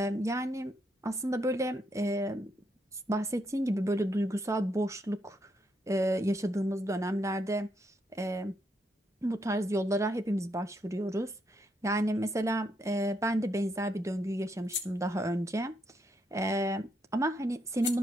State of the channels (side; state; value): both; normal; correlation 0.77